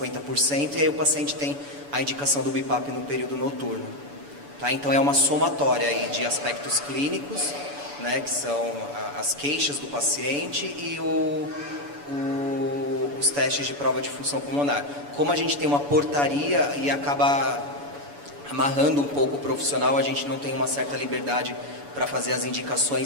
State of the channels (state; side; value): late; left; 7.0 ms